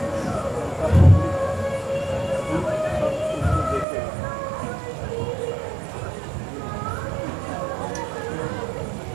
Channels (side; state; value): left; drops out; at 3.9 s